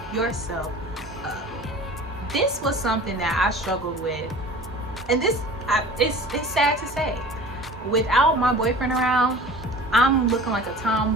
yourself up. This was something that I struggled with, and it's sad to say, without my boyfriend around, I'm looking like a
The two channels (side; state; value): both; normal; correlation 0.41